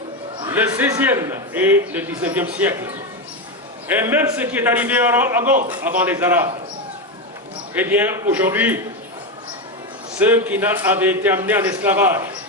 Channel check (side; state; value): both; normal; correlation 0.12